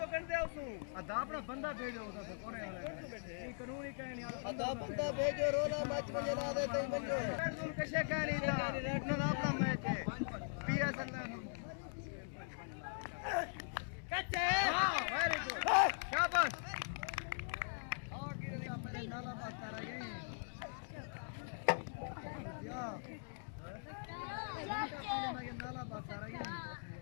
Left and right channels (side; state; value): right; silent; digital silence